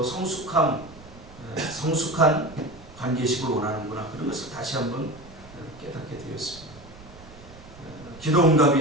성숙한 관계식을 원하는구나, 그런 것을 다시 한번 깨닫게 되었습니다. 기도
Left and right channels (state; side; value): noise; right; rumble, 19 dB below the sound